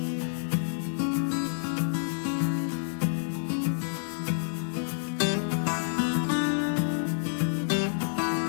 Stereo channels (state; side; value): silent; right; digital silence